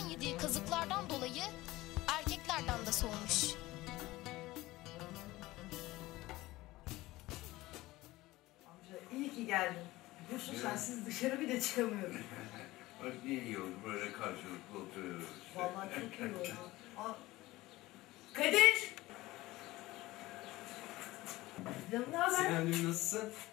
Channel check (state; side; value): quieter; right; 18.6 dB